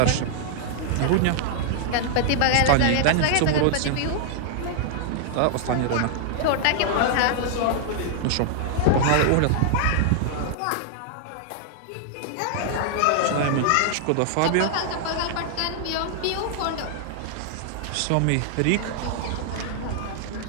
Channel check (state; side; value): different; both; correlation -0.01